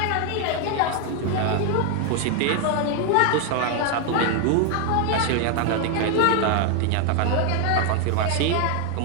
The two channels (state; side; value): different; both; correlation 0.01